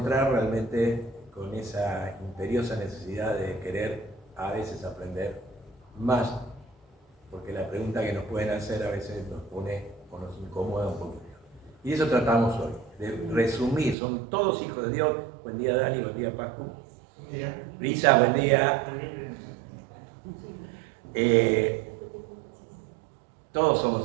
realmente con esa imperiosa necesidad de querer a veces aprender más. Porque la pregunta que nos pueden hacer a veces nos pone o nos incomoda un poquito. Y eso tratamos hoy, de resumir. Son todos hijos de Dios. Buen día, Dani, buen día, Paco. Buen día. Risa, buen día. Todos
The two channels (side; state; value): left; drops out; at 14.0 s